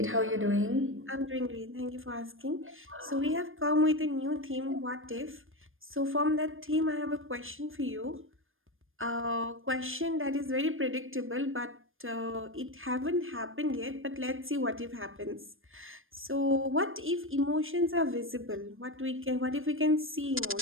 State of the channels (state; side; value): late; left; 0.59 ms